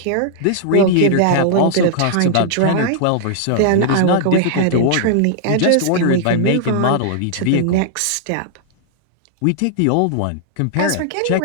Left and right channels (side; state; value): both; different; correlation -0.01